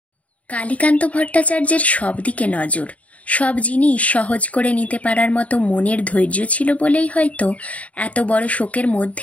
কালীকান্ত ভট্টাচার্যের সব দিকে নজর, সব জিনিস সহজ করে নিতে পারার মতো মনের ধৈর্য ছিল বলেই হয়তো এত বড় শোকের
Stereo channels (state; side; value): late; right; 0.068 ms